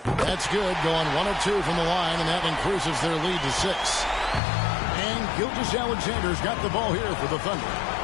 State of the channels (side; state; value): right; drops out; at 4.4 s